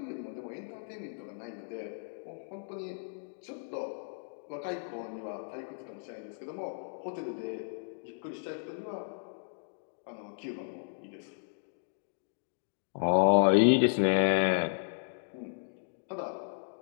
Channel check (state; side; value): silent; right; digital silence